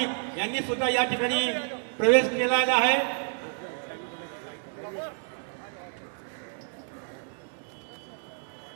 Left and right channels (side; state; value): left; silent; digital silence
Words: यांनी सुद्धा या ठिकाणी प्रवेश केलेला आहे.